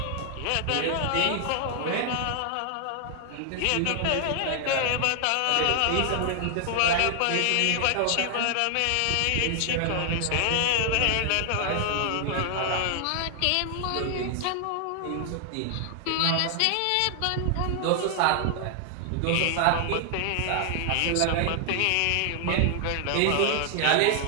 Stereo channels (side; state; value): both; different; correlation 0.00